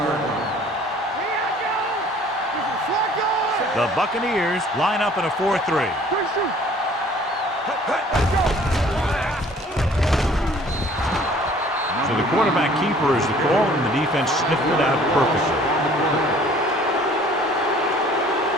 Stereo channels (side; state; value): both; normal; correlation 0.53